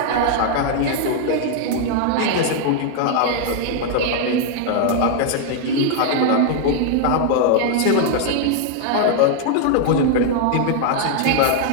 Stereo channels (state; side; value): different; both; correlation 0.00